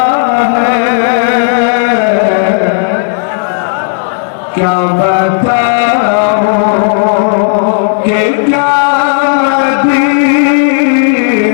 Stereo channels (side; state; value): right; silent; digital silence